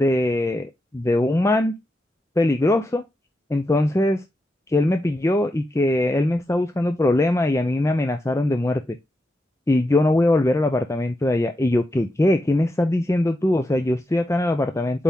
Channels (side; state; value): both; normal; correlation 0.86